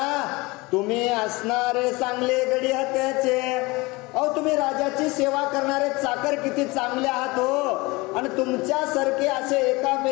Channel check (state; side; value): quieter; right; 23.6 dB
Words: तुम्ही असणारे चांगले गडी हत्याचे. अहो तुम्ही राजाची सेवा करणारे चाकर किती चांगले आहात हो. आणि तुमच्यासारखे असे